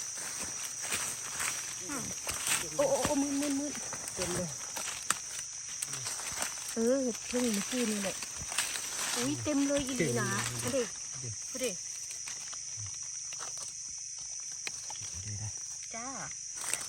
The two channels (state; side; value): identical; both; correlation 1.00